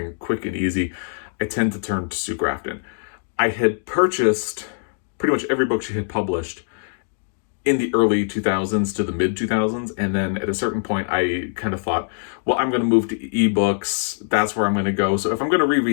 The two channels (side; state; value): right; silent; digital silence